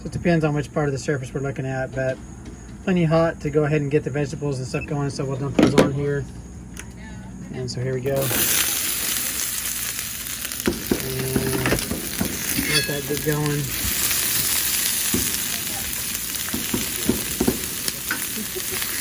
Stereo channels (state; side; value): identical; both; correlation 1.00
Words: it depends on which part of the surface we're looking at, but plenty hot to go ahead and get the vegetables and stuff going, so we'll dump those on here. And so here we go. And let that get going.